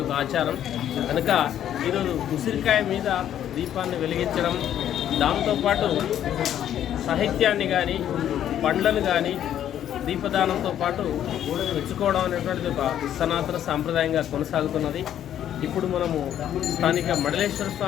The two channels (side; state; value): right; quieter; 10.7 dB